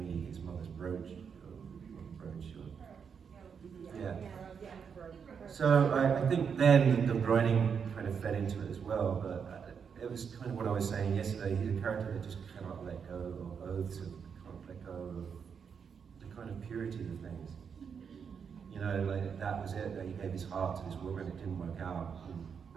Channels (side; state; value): left; quieter; 6.7 dB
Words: his mother's brooch. Yeah. So I think then the writing kind of fed into it as well, but it was kind of what I was saying yesterday. He's a character that just cannot let go of oaths, and can't let go of the kind of purity of things. You know, like that was it, that he gave his heart to this woman, it didn't work out, and